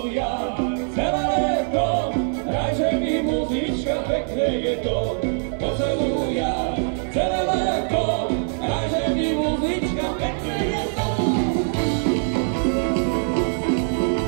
celé leto, hraj, že mi muzička, pekne je to, po celú jar, celé leto, hraj, že mi muzička, pekne je to.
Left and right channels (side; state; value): left; silent; 55 dB below the other